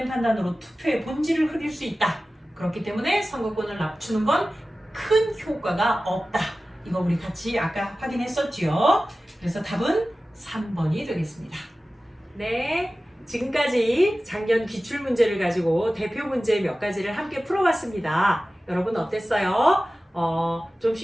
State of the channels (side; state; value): both; normal; correlation 0.96